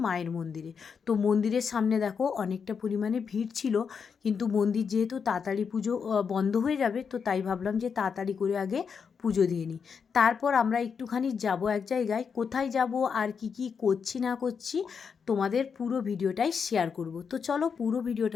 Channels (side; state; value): right; quieter; 6.2 dB